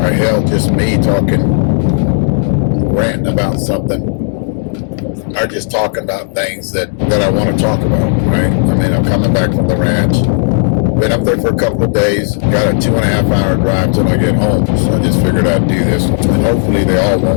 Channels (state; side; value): silent; right; 72 dB below the other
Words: hell, just me talking, ranting about something, or just talking about things that I want to talk about, right? I mean, I'm coming back from the ranch. Been up there for a couple of days. Got a 2.5 hour drive till I get home. So I just figured I'd do this one. And hopefully they all